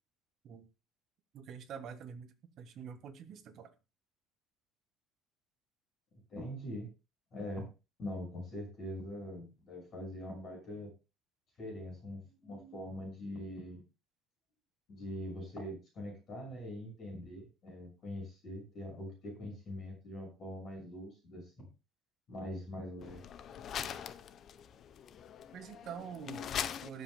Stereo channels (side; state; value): both; normal; correlation 0.62